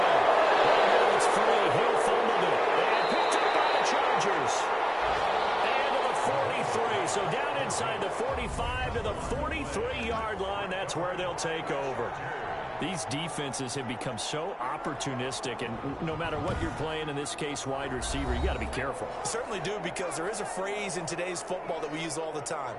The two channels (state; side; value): identical; both; correlation 1.00